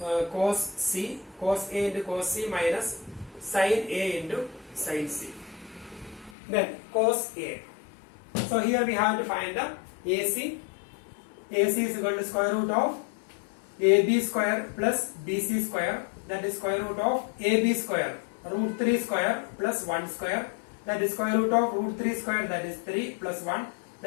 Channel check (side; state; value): right; drops out; at 6.4 s